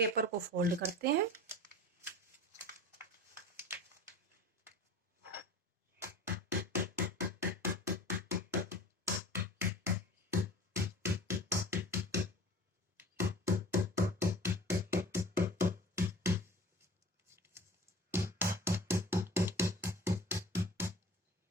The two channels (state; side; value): normal; both; correlation 0.40